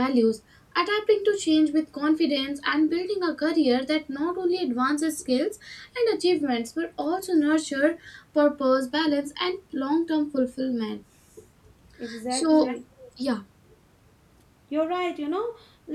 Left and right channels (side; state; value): both; identical; correlation 1.00